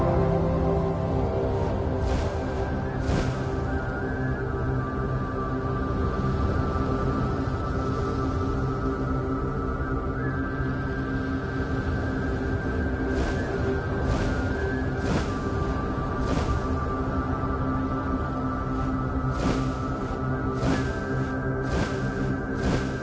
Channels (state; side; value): identical; both; correlation 1.00